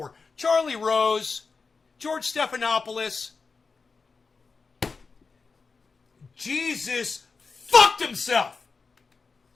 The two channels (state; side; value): quieter; right; 4.6 dB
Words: Charlie Rose, George Stephanopoulos. Jesus fucked himself.